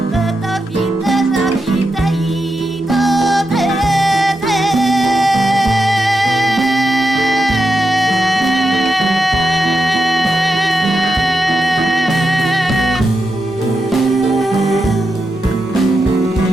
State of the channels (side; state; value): both; normal; correlation 0.86